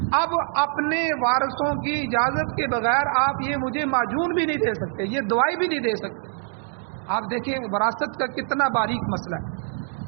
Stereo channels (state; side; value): silent; left; digital silence